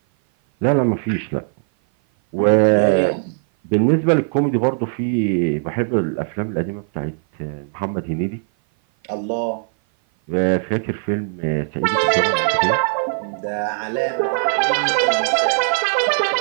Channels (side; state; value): left; silent; 56 dB below the other